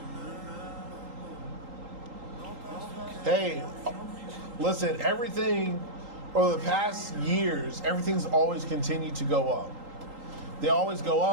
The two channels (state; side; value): late; left; 3.8 ms